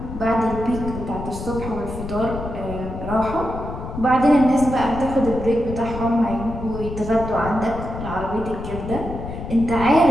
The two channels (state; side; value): noise; left; rumble, 8 dB below the sound